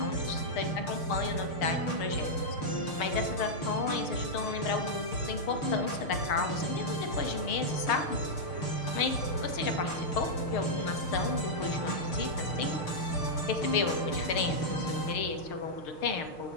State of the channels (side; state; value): right; late; 6.5 ms